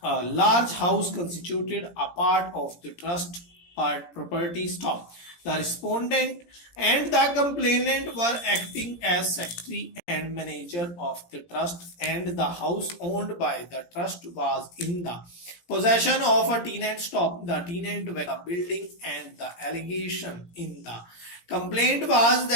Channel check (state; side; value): late; right; 17 ms